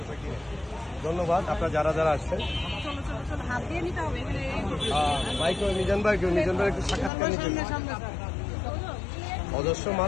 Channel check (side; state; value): right; drops out; at 7.1 s